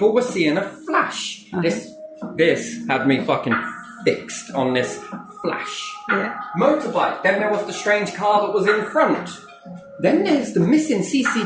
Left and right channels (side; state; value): both; identical; correlation 1.00